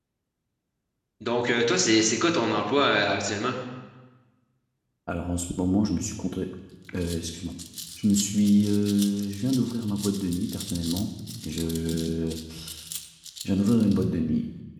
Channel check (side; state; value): both; identical; correlation 1.00